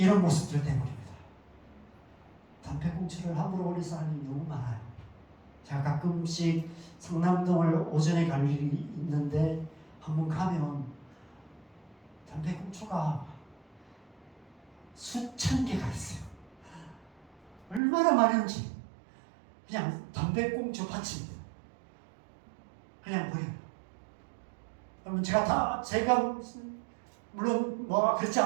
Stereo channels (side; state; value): left; drops out; at 17.8 s